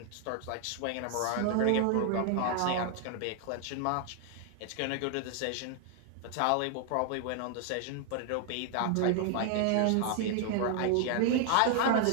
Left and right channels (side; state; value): both; different; correlation 0.00